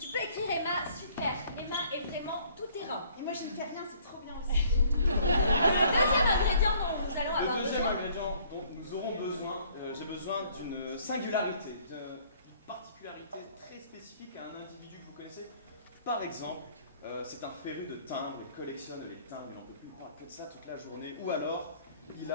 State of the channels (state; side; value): inverted; both; correlation -0.59